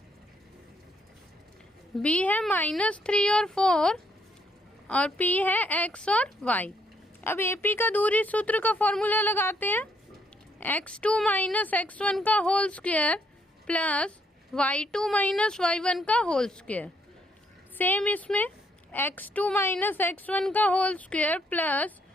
बी है -3 और 4 और पी है एक्स और वाई। अब ए पी का दूरी सूत्र का फॉर्मूला लगाते हैं। x2 - x1 का whole square plus y2 - y1 का होल स्क्वायर। सेम इसमें x2 - x1 का whole square plus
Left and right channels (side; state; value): both; normal; correlation 0.71